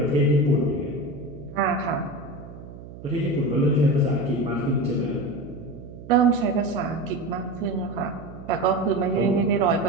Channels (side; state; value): right; noise; hum, 15 dB below the sound